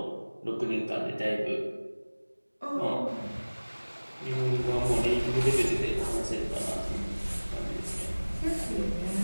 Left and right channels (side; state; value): both; inverted; correlation -1.00